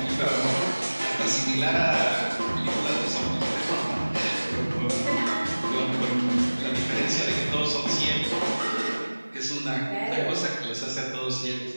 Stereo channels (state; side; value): inverted; both; correlation -1.00